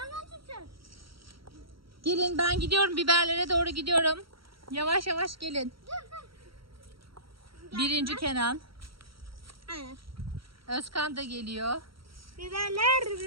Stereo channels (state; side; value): late; left; 0.74 ms